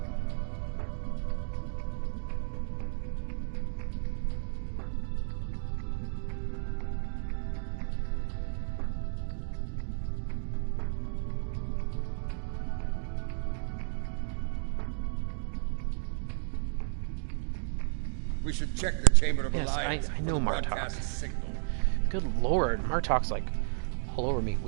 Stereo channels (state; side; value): silent; left; digital silence